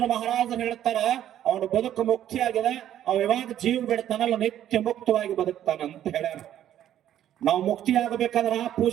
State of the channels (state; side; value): quieter; left; 11.4 dB